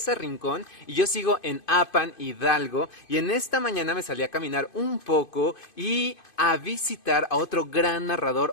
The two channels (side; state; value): right; late; 2.5 ms